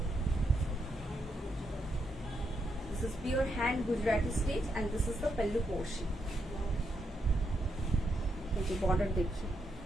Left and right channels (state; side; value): normal; both; correlation 0.81